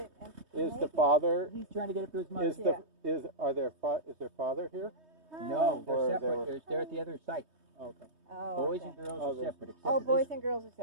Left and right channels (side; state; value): left; late; 3.2 ms